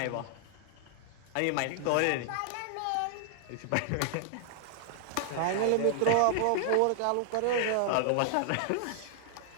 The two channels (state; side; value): different; both; correlation 0.00